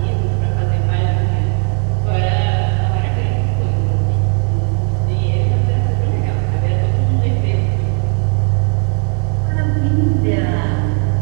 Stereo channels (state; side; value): quieter; left; 38.6 dB